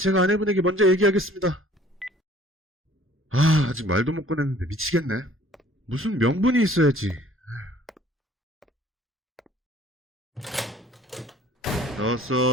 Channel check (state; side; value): normal; both; correlation 0.54